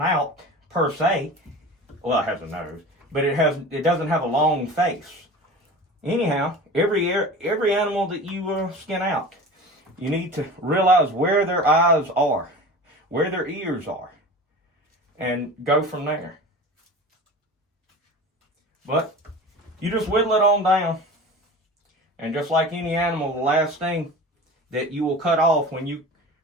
per se. Well, it has a nose, but it doesn't have a long face. Anyhow, every animal that you skin out, you need to realize where their eyes are, where their ears are, and go from there. But you just whittle it on down. And just like any animal, the last thing that you will cut off when you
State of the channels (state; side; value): normal; both; correlation 0.35